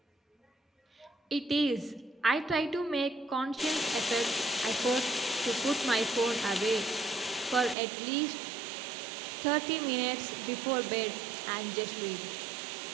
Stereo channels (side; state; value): left; drops out; at 7.8 s